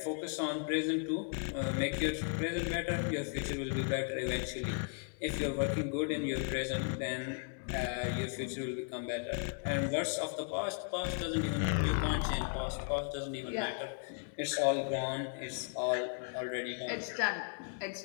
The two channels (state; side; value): silent; right; 54 dB below the other